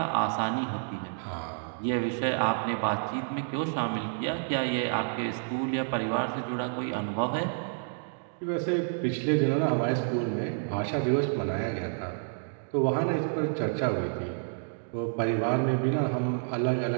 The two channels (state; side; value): silent; left; digital silence